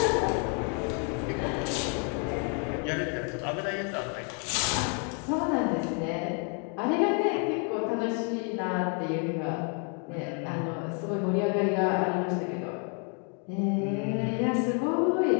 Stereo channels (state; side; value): quieter; right; 39.7 dB